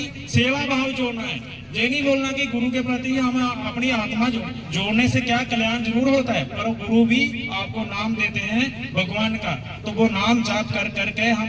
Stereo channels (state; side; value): identical; both; correlation 1.00